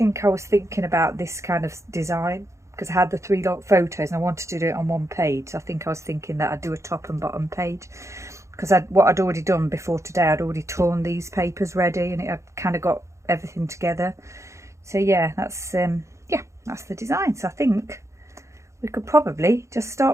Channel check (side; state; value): left; late; 0.14 ms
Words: I was thinking about this kind of design, because I had the 3 photos and I wanted to do it on one page. So I think I was thinking that I'd do a top and bottom page, because what I'd already done before today, I'd already torn these papers ready, and it had kind of got everything together. So yeah, that's that's the design. So I think we could probably just